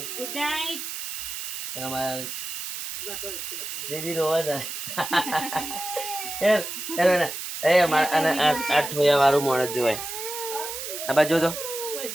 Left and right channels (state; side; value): noise; right; hiss, 6 dB below the sound